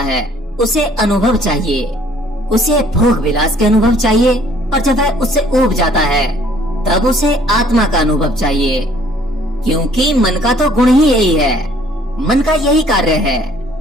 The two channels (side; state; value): both; normal; correlation 0.59